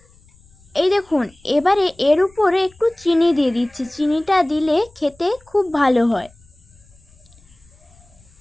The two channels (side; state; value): left; noise; rumble, 29 dB below the sound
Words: এই দেখুন এবারে এর উপরে একটু চিনি দিয়ে দিচ্ছি। চিনিটা দিলে খেতে খুব ভালো হয়।